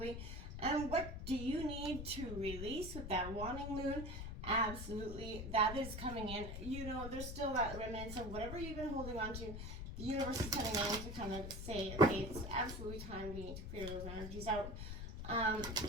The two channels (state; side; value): noise; left; rumble, 6 dB below the sound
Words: And what do you need to release with that wanting moon? Absolutely, that is coming in. You know, there's still that remnants of whatever you've been holding on to. The universe is coming in to kind of say, okay, it's absolutely time we need to clear those energies out. And